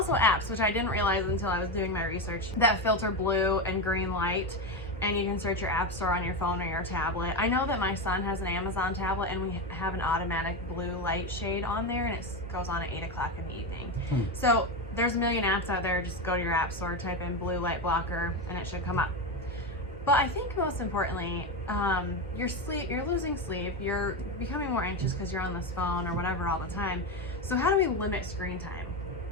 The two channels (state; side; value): normal; both; correlation 0.14